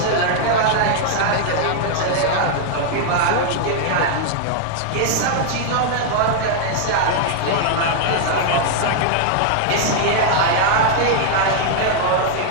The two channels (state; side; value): different; both; correlation 0.00